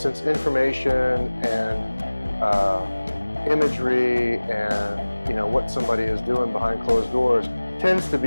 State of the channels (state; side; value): inverted; both; correlation -1.00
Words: information and imagery and, you know, what somebody is doing behind closed doors tends to